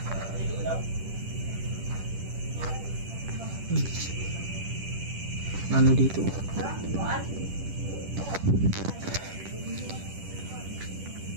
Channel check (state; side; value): late; left; 10 ms